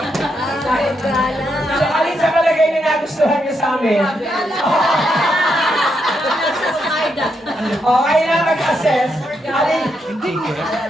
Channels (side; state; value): both; normal; correlation 0.81